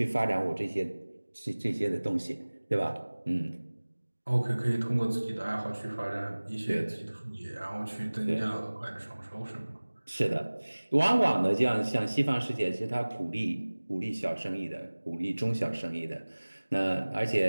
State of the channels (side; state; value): both; inverted; correlation -1.00